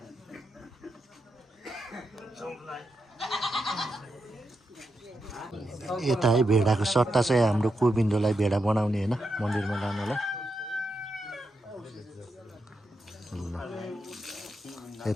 यता है भेडाको सट्टा चाहिँ हाम्रो गोविन्दलाई भेडा बनाउने होइन मन्दिरमा लानलाई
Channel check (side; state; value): both; normal; correlation 0.86